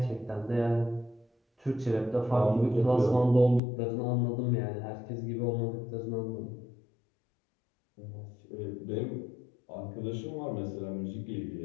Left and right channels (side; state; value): right; drops out; at 3.6 s